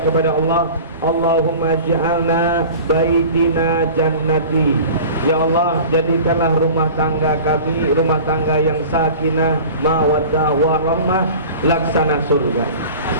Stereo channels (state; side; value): inverted; both; correlation -0.39